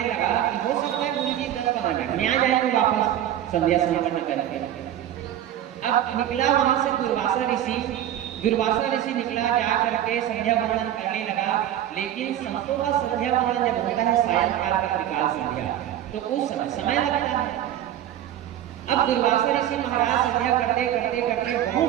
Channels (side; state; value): left; quieter; 11.6 dB